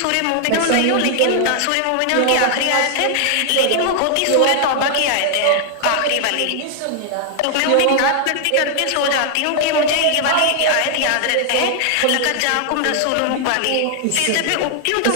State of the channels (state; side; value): different; both; correlation 0.00